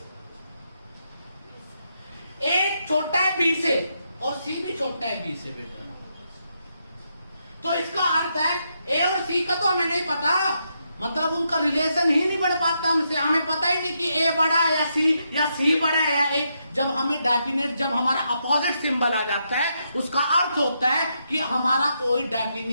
ए छोटा है बी से और सी भी छोटा है बी से बेटा, तो इसका अर्थ है ए और सी का तो हमें नहीं पता, मतलब उनका रिलेशन ही नहीं बढ़ पाता हमसे। हमें पता ही नहीं कि ए बड़ा है या सी बड़ा है या ए। जब हमें डेफिनेट, जब हमारा अपोजिट सिंबल आ जाता है उसका अर्थ होता है कि हमारा कोई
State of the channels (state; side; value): inverted; both; correlation -0.81